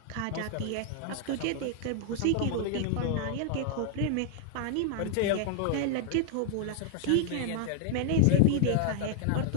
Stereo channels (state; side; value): different; both; correlation -0.01